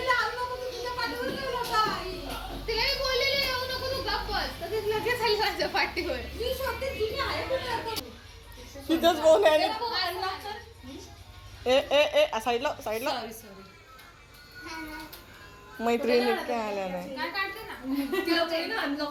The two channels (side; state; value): both; identical; correlation 1.00